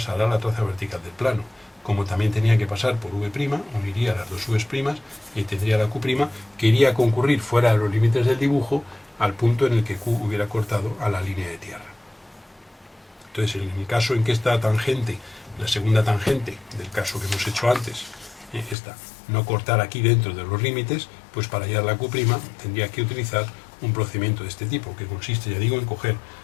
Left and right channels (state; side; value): drops out; right; at 18.8 s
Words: la traza vertical del plano. Como también tenía que pasar por V', uniría las dos V's' y tendría la Q' que iría a concurrir fuera de los límites del dibujo al punto en el que Q hubiera cortado a la línea de tierra. Entonces, en el caso en que esta tangente, la segunda tangente del caso que hemos hecho antes, esta, no cortar aquí dentro de los límites, pues para hallar la Q' tendría que utilizar un procedimiento de este tipo, que consiste, ya digo, en coger,